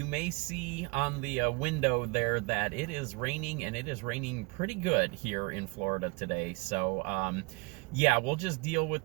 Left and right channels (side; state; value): left; quieter; 27.5 dB